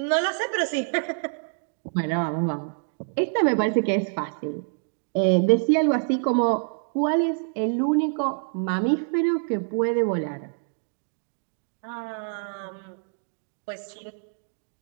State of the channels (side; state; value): left; silent; 61 dB below the other